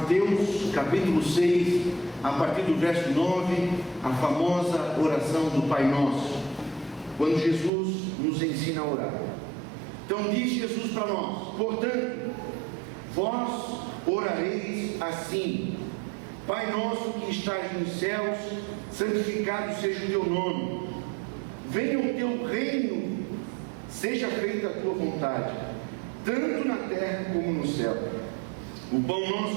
capítulo 6, a partir do verso 9, a famosa oração do Pai Nosso, quando Jesus nos ensina a orar. Então diz Jesus para nós: portanto, vós orareis assim: Pai nosso que estás nos céus, santificado seja o teu nome, venha o teu reino, seja feita a tua vontade, tanto na terra como no céu. O pão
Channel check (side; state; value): left; drops out; at 7.7 s